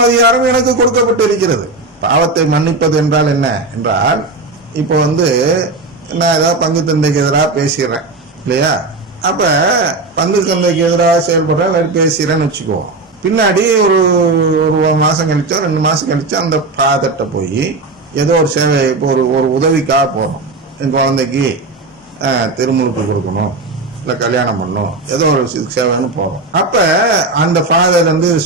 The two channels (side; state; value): left; quieter; 3.3 dB